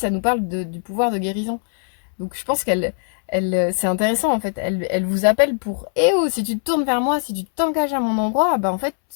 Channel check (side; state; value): right; silent; 65 dB below the other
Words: nous parle du pouvoir de guérison. Donc je pense c'est intéressant en fait. Elle vous appelle pour eh oh, si tu te tournes vers moi, si tu t'engages à mon endroit, bah en fait,